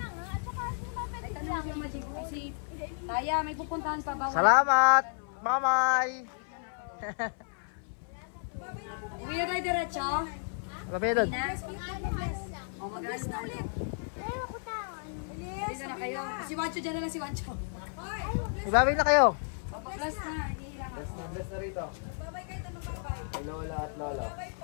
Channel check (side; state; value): right; silent; 56 dB below the other